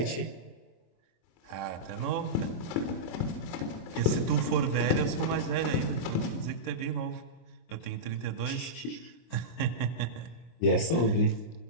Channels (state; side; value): late; right; 24 ms